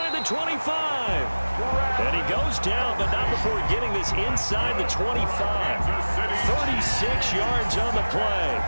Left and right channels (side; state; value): both; inverted; correlation -1.00